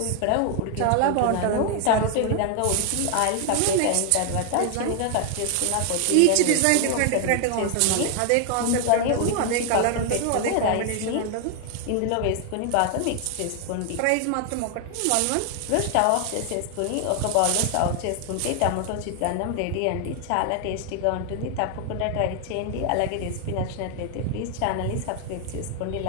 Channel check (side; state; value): both; different; correlation 0.00